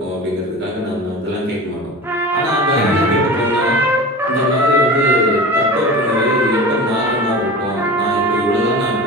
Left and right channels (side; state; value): both; normal; correlation 0.33